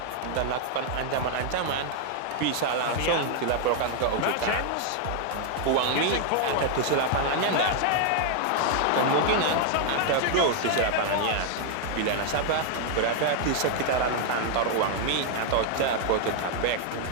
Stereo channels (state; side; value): different; both; correlation 0.00